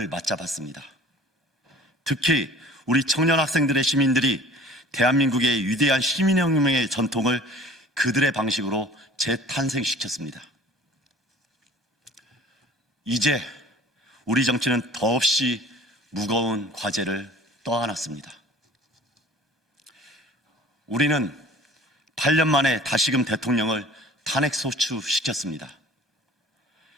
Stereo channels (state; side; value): normal; both; correlation 0.47